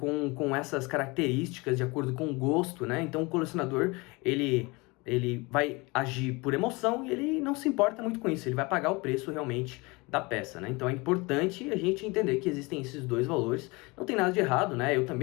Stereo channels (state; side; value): quieter; right; 25.6 dB